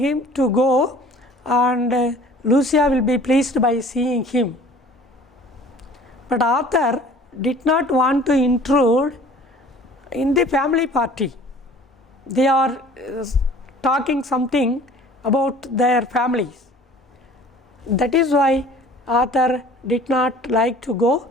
to go and Lucia will be pleased by seeing him. But author did not want to intrude in the family party. They are talking something about their families. That is why author did not like to go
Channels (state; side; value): normal; both; correlation 0.48